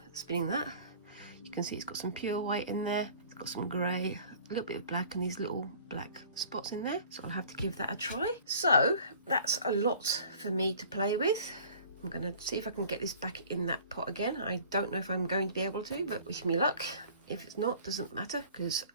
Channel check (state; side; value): inverted; both; correlation -0.49